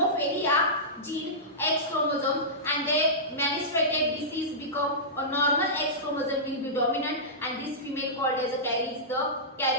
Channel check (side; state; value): both; normal; correlation -0.16